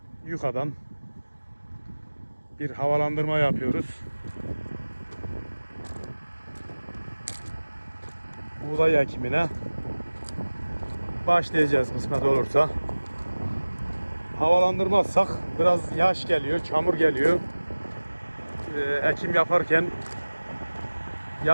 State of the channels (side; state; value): both; inverted; correlation -1.00